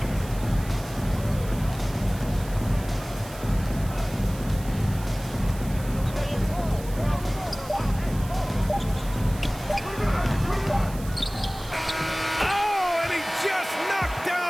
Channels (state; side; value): noise; right; hiss, 17 dB below the sound